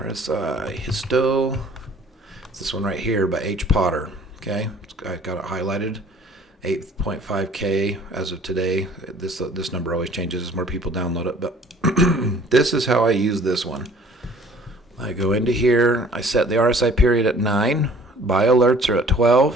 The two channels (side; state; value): both; normal; correlation 0.53